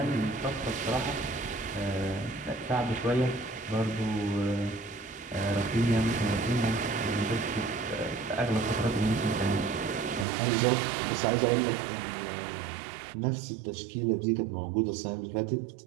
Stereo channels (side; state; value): left; drops out; at 10.2 s